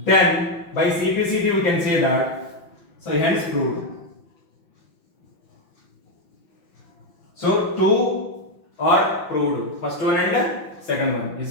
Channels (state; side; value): late; right; 5.9 ms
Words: by CPCT we can say that. So hence proved. So two are proved. First one and second one. Is